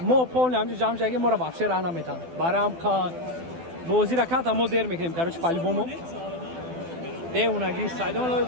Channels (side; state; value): left; late; 12 ms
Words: ما پول نمیشه جمع جایی ما را بخشی راه نمیتن برام که بازی را کات ما دیر میکنیم کاروچ پالی بومو دیونگی سایدون